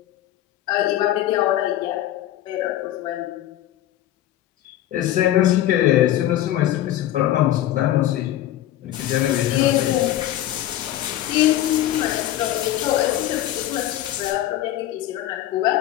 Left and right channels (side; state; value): right; quieter; 13.1 dB